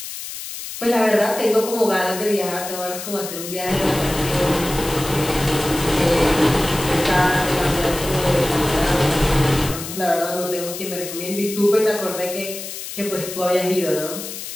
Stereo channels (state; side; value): noise; left; hiss, 9 dB below the sound